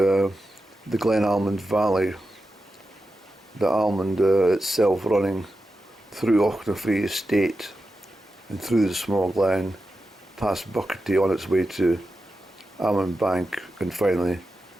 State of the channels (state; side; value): normal; both; correlation 0.90